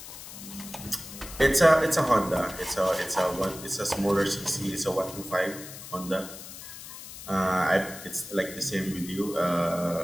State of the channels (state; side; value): noise; left; hiss, 13 dB below the sound